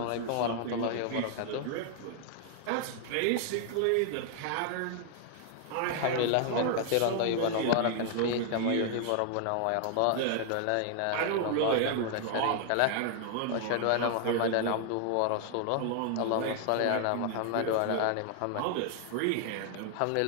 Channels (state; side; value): different; both; correlation 0.00